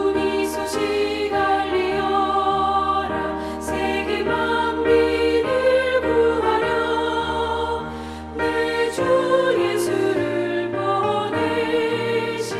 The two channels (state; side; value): identical; both; correlation 1.00